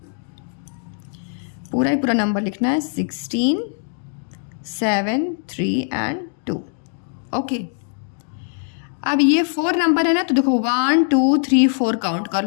पूरा ही पूरा नंबर लिखना है, 16, 7, 3 एंड 2। ओके, अब ये 4 नंबर है ना, तो देखो 1 2 3 4 काउंट कर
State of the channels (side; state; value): right; silent; 63 dB below the other